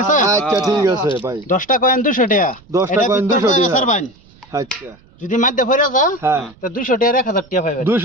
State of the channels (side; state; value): right; noise; rumble, 27 dB below the sound